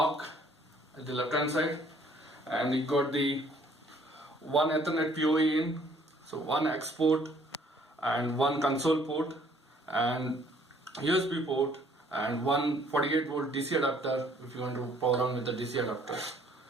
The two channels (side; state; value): both; normal; correlation 0.61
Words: at the left hand side, and it got the one Ethernet PoE in, so one export and one console port and USB port and one 48 volt DC adapter if you want to power on with the DC adapter.